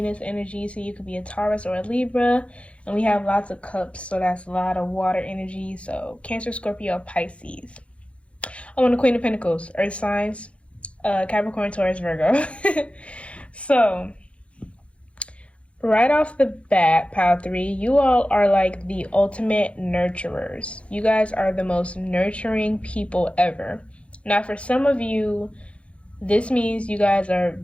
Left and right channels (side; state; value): right; late; 0.061 ms